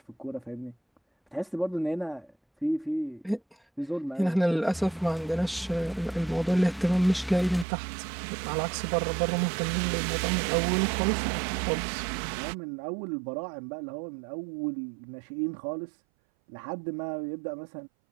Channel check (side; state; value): left; drops out; at 7.7 s